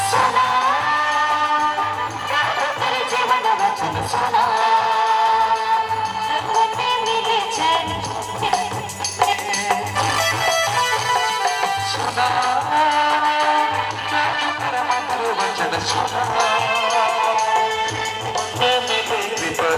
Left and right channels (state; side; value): identical; both; correlation 1.00